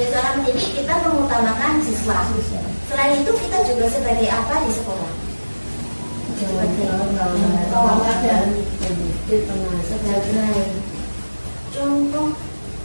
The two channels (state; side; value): inverted; both; correlation -1.00